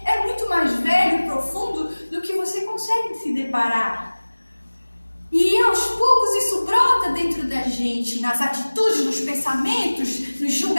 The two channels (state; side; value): inverted; both; correlation -1.00